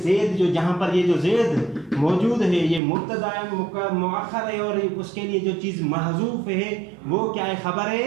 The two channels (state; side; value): drops out; left; at 2.8 s